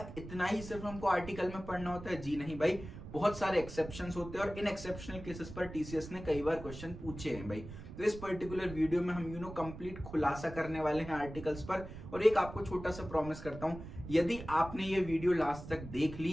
इतना ही सिर्फ हमको आर्टिकल में पढ़ना होता है? जी नहीं भाई, बहुत सारे एक्सेप्शंस होते हैं और इन एक्सेप्शनल केसेस पर टीसीएस ने कई बार क्वेश्चन पूछे हैं भाई। तो इस पर्टिकुलर वीडियो में हम कंप्लीट खुलासा करने वाले हैं आर्टिकल्स पर। और एक आपको छोटा सा प्रॉमिस करता हूं, यदि आपने ये वीडियो लास्ट तक देख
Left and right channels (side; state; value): right; noise; rumble, 12 dB below the sound